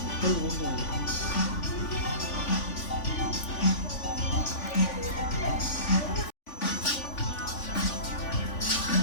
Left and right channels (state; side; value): late; right; 3.5 ms